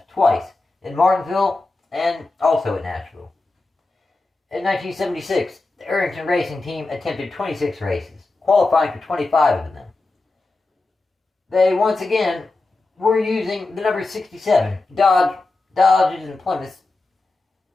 twice in Martinsville and also at Nashville. In 1976, the Arrington Racing team attempted 26 races, qualifying for 25 of them. They once again were using the number 67 Dodges and Plymouths,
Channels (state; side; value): quieter; right; 3.3 dB